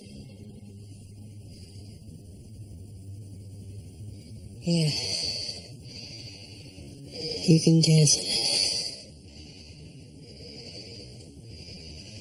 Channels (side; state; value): both; identical; correlation 1.00